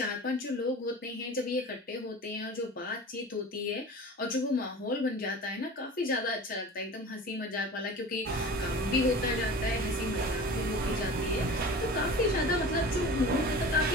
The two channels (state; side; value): normal; both; correlation 0.37